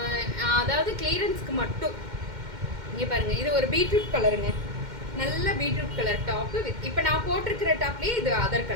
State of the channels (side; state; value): left; late; 2.1 ms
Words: அதாவது கிளியரன்ஸ்க்கு மட்டும். இங்கே பாருங்கள், இது ஒரு பீட்ரூட் கலருங்க, நல்ல பீட்ரூட் கலர் டாப்பு வித் இப்போ நான் போட்டிருக்கிற டாப்லேயே இது other